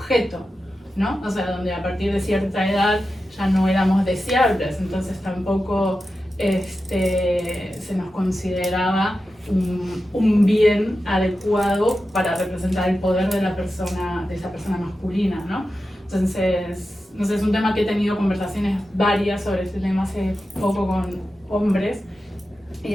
¿no? O sea, donde a partir de cierta edad ya no éramos deseables, entonces tampoco se nos consideraba un bien adecuado para representar el poder de esa persona masculina, ¿no? Entonces, no sé, es un tema que he tenido conversaciones varias sobre este tema hace poco con hombres y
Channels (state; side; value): normal; both; correlation 0.92